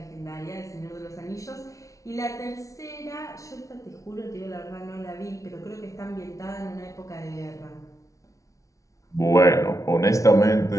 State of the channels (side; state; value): right; late; 0.16 ms